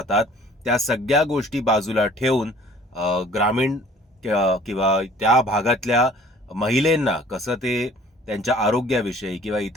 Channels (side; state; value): both; normal; correlation 0.52